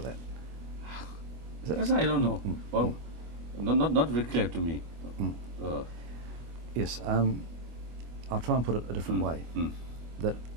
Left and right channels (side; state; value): left; late; 25 ms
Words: that? Yes, I don't know. Well, not very clear to me. Yes, I'll try and put it a different way. That